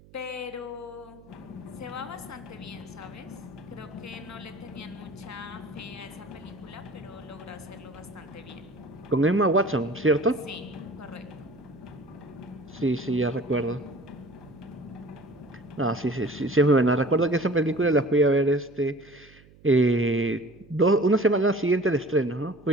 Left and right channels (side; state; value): right; noise; hum, 25 dB below the sound